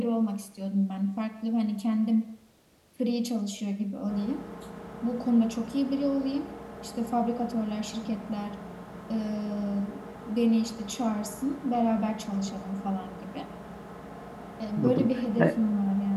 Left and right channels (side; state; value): both; identical; correlation 1.00